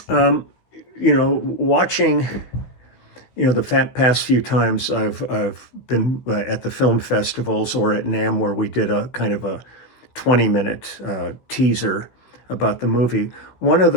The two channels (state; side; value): late; right; 15 ms